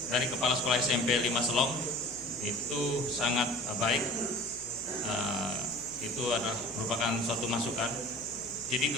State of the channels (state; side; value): noise; left; hum, 21 dB below the sound